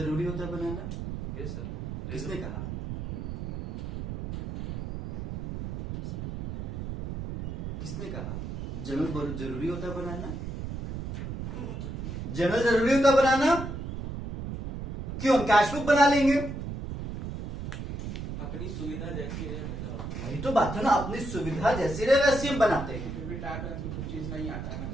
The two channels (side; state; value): right; noise; rumble, 6 dB below the sound